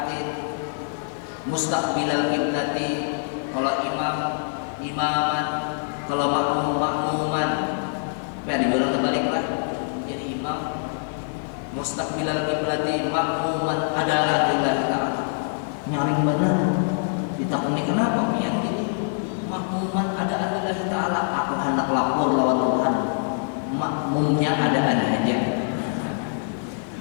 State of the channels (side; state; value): right; silent; 58 dB below the other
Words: mustaqbilal qiblati. Kalau imaman, kalau makmuman, dibilang terbaliklah. Jadi imam mustaqbilal qiblati, makmuman adalah lillahi ta'ala. Nyaring benar. Ditakuni kenapa pian gini? Makmuman ada lillahi ta'ala. Aku hendak lapor lawan Tuhan. Makmumnya ada aja.